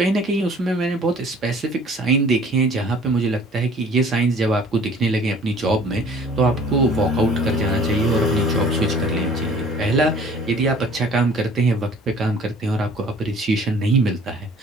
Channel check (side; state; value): both; normal; correlation 0.51